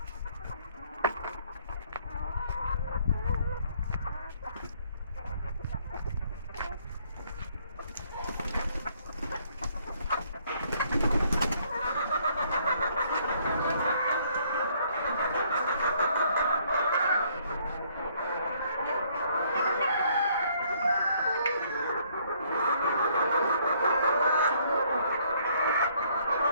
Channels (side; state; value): both; inverted; correlation -0.65